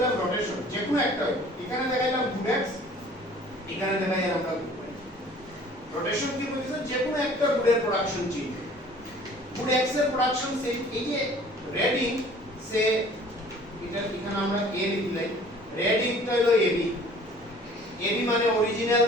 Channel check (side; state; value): both; normal; correlation 0.51